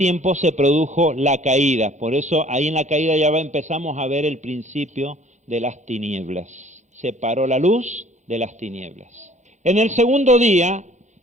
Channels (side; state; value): left; late; 0.34 ms